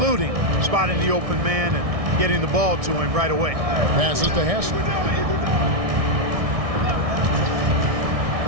spotting the open man and getting the ball to him right away. Passes to Hassel.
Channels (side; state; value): left; late; 1.6 ms